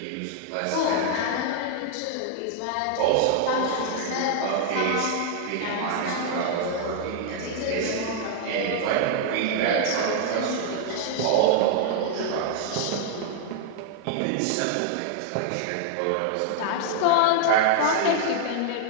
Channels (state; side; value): different; both; correlation 0.00